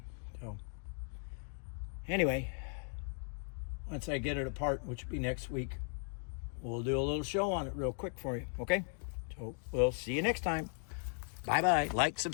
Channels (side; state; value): right; silent; 53 dB below the other